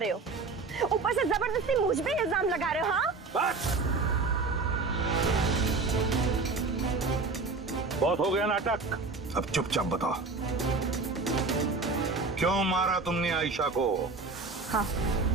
हो, ऊपर से जबरदस्ती मुझ पे इल्जाम लगा रहे हो। हाँ, बस बहुत हो गया नाटक। अब चुपचाप बताओ, क्यों मारा तुमने आयशा को? हाँ,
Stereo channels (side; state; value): left; quieter; 3.9 dB